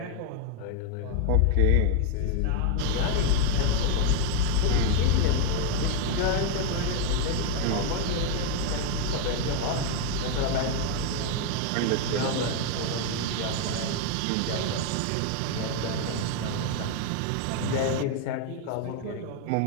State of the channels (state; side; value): different; both; correlation 0.01